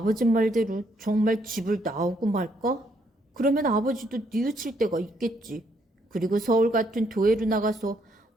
말대로 정말 집을 나오고 말까? 그러면 아버지도 뉘우칠 때가 있겠지. 그리고 서울 같은 도회로 나가서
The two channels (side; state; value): both; normal; correlation 0.72